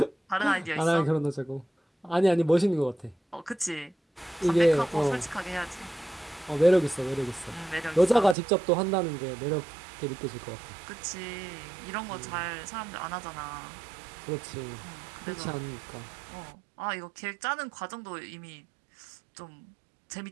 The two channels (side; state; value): left; drops out; at 8.3 s